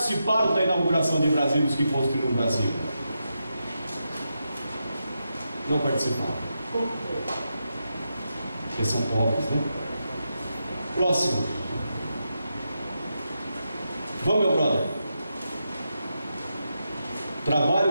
da inauguração de Brasília, os que construíram Brasília. Não participaram. Porque são pobres, né? Próximo. Vamos, meu brother.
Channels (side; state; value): both; inverted; correlation -0.86